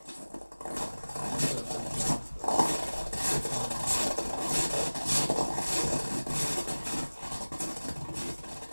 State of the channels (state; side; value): inverted; both; correlation -1.00